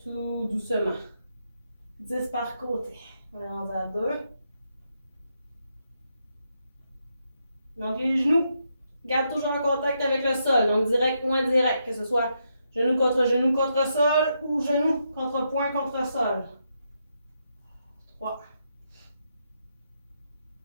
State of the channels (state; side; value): inverted; both; correlation -0.81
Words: tout doucement. 10 par côté. On est rendu à 2. Donc, les genoux gardent toujours un contact avec le sol, donc direct ou indirect, que ce soit genou contre sol ou genou contre poing contre sol. 3.